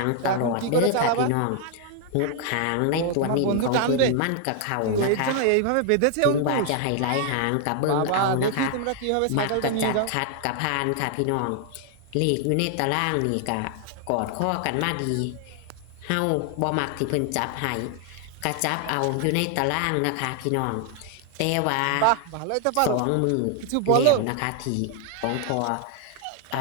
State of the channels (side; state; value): both; different; correlation 0.00